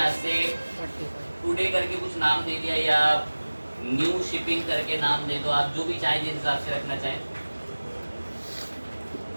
से टुडे करके कुछ नाम दे दिया, या न्यू शिपिंग करके नाम दे दो, आप जो भी चाहें, जिस हिसाब से रखना चाहें।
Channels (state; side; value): inverted; both; correlation -1.00